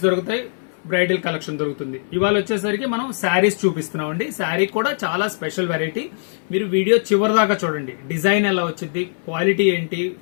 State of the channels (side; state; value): right; silent; 64 dB below the other